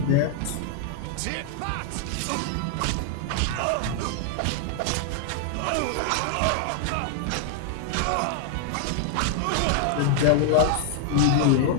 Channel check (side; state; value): both; different; correlation 0.00